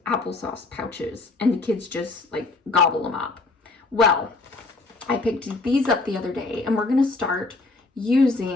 applesauce pouches and the kids just like gobble them up? Well, I picked these up the other day, and we're gonna start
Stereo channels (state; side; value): quieter; right; 3.4 dB